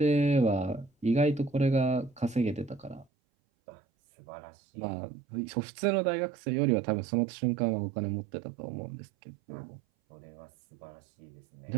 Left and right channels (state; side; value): drops out; left; at 3.1 s